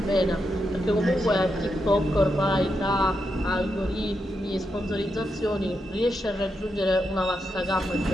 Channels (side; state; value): both; normal; correlation 0.84